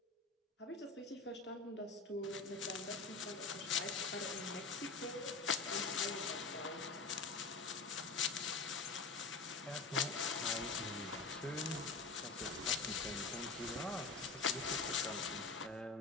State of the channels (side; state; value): right; quieter; 4.3 dB